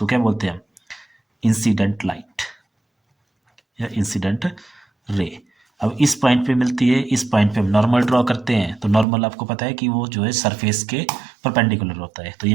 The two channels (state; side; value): drops out; left; at 9.1 s